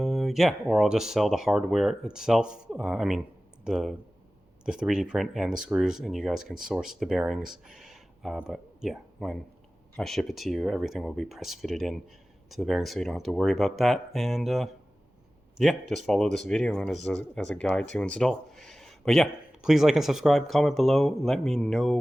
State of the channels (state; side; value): normal; both; correlation 0.97